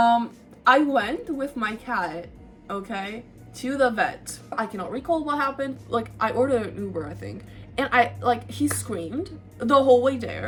went with my cat, okay, to the vet. I cannot recall what happened, like, I ordered an Uber, I think, and he screamed the whole way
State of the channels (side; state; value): both; identical; correlation 1.00